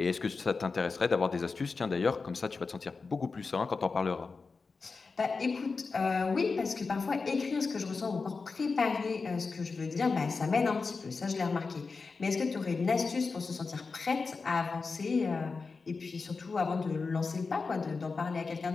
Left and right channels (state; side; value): quieter; right; 4.4 dB